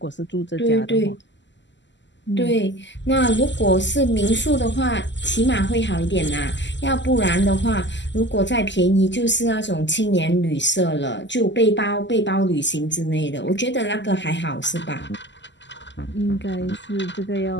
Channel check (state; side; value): late; right; 0.53 ms